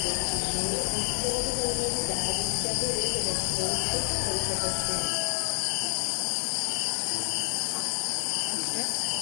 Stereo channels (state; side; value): silent; right; digital silence